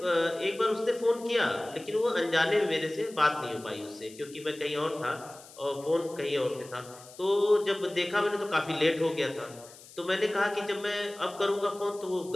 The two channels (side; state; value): left; noise; hiss, 20 dB below the sound